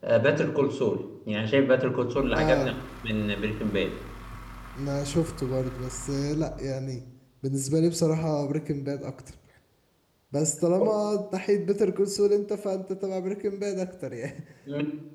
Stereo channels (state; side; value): identical; both; correlation 1.00